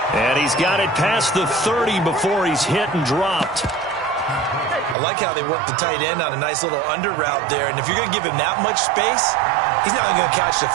And he's got it past the 30 before he's hit and dropped. I like how they work the tight end on a nice little under route there. And if you're going to give him that much space, he's not even going to catch the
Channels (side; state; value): left; drops out; at 5.0 s